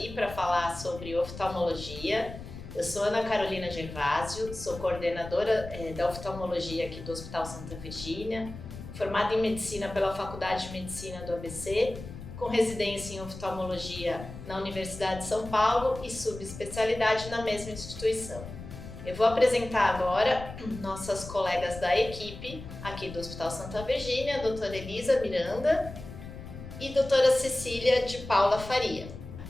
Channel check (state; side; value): noise; left; rumble, 12 dB below the sound